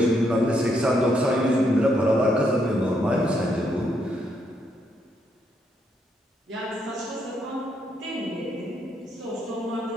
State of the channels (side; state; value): both; normal; correlation 0.76